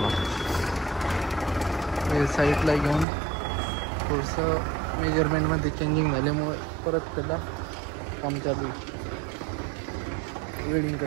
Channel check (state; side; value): drops out; left; at 3.1 s